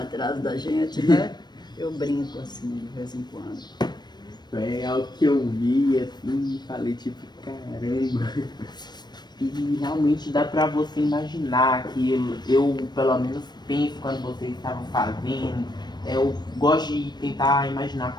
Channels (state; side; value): late; right; 0.21 ms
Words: da gente, né? Eu brinco assim de vez em quando. É algo que eu vi assim e falei tipo, caramba. E realmente dá pra você imaginar aquilo. Eu pelo menos penso quando vocês estavam fazendo. Eu gosto de tentar imaginar